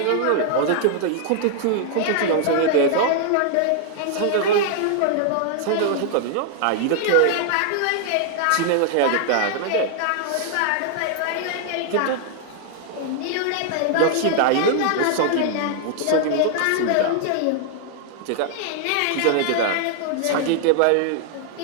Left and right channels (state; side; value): different; both; correlation -0.01